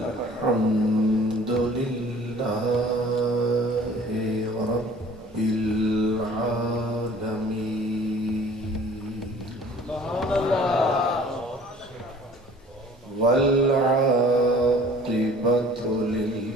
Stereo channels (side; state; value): both; normal; correlation 0.49